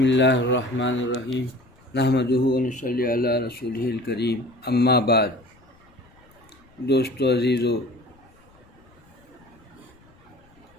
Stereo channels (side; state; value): left; noise; rumble, 29 dB below the sound